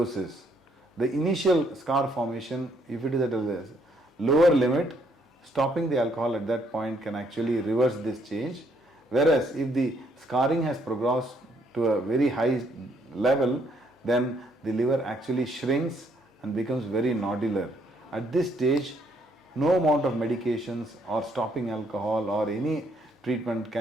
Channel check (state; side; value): normal; both; correlation 0.70